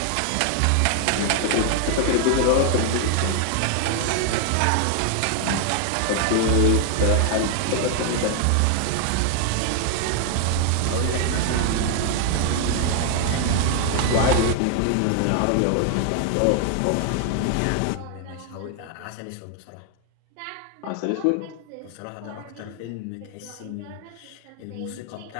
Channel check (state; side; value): different; both; correlation 0.00